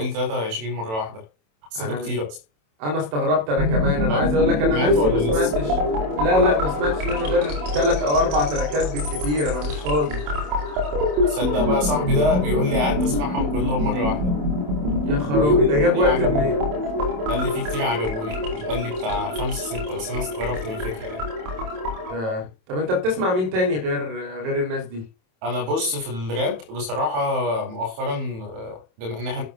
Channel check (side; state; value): left; late; 27 ms